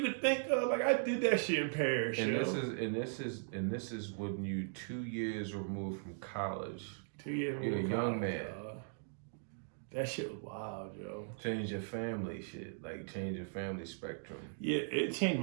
could think of. Like I did that shit in Paris. And this is when you 2 years removed from college. 2 years You're a young man. That shit was wild, yo. Change your family shit, like change your family spectrum. Yeah, it changed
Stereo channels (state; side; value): silent; left; digital silence